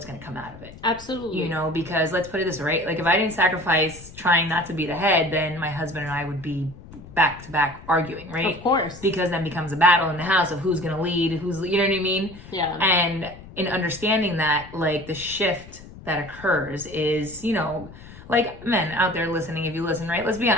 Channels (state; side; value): noise; left; rumble, 18 dB below the sound